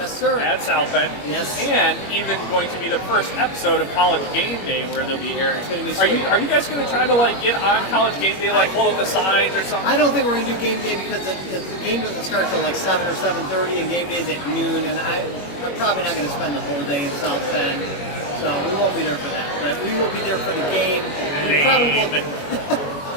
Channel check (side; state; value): right; late; 21 ms